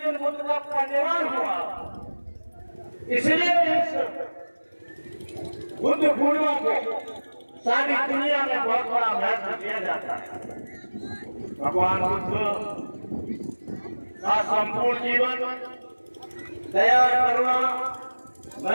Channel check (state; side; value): inverted; both; correlation -1.00